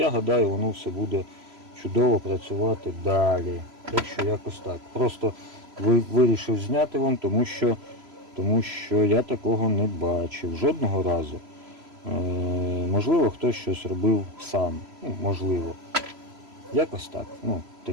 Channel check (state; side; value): late; left; 3.0 ms